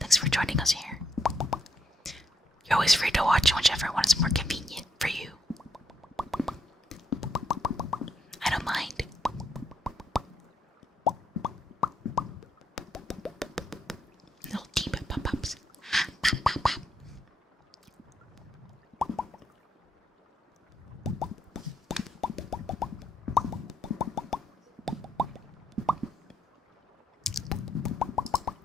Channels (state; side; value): normal; both; correlation 0.76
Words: for joining us here. You're always free to watch whichever one is more convenient for you. I don't mind. Little deep pop-ups. Pop, pop, pop.